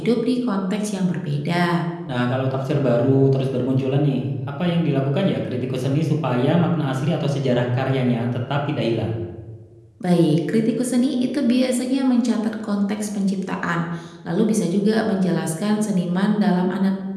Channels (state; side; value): identical; both; correlation 1.00